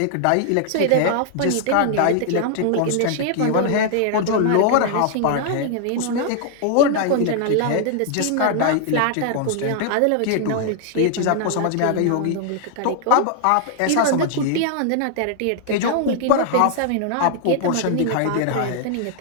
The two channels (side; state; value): both; different; correlation 0.00